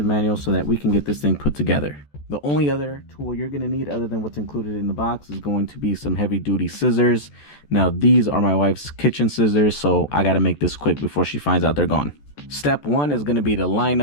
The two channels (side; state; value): right; late; 14 ms